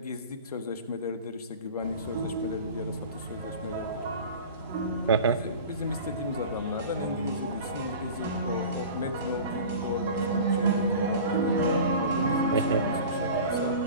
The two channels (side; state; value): both; inverted; correlation -0.37